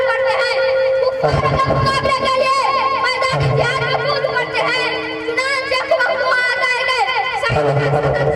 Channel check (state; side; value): identical; both; correlation 1.00